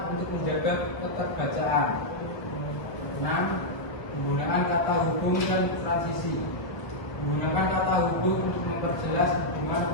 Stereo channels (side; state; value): right; late; 1.2 ms